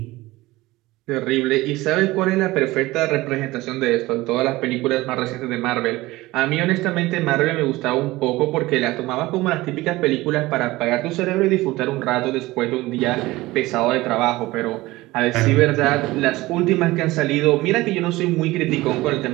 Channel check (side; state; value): left; quieter; 19.1 dB